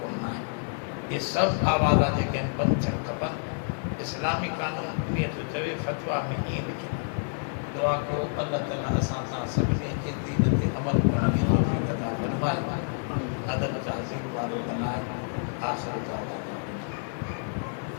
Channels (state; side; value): silent; right; digital silence